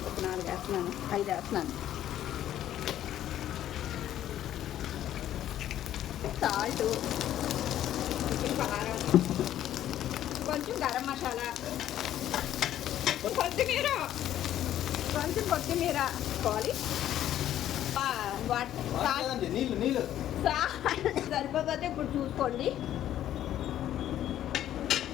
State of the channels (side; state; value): right; quieter; 11.9 dB